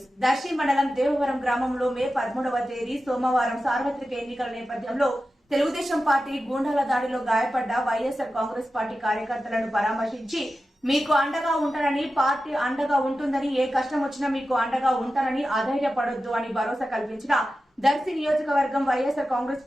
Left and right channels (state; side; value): normal; both; correlation 0.93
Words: దర్శి మండలం దేవవరం గ్రామంలో మే 13వ తేదీ సోమవారం సార్వత్రిక ఎన్నికల నేపథ్యంలో తెలుగుదేశం పార్టీ గూండాల దాడిలో గాయపడ్డ వైఎస్ఆర్ కాంగ్రెస్ పార్టీ కార్యకర్తలను పరామర్శించి మీకు అండగా ఉంటానని, పార్టీ అండగా ఉంటుందని, ఏ కష్టం వచ్చినా మీకు అండగా ఉంటానని, అధైర్యపడొద్దు అని భరోసా కల్పించిన దర్శి నియోజకవర్గం వైఎస్ఆర్